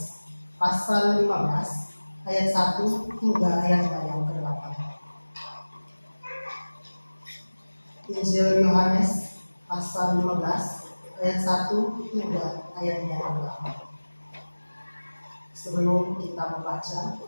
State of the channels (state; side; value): inverted; both; correlation -1.00